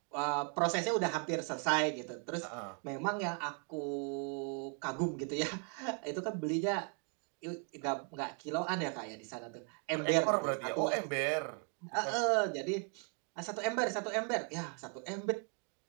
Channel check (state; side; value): quieter; left; 38.6 dB